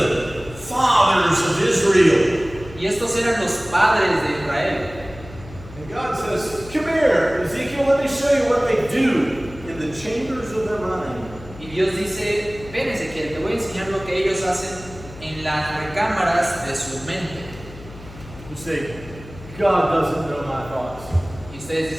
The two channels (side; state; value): left; noise; hum, 17 dB below the sound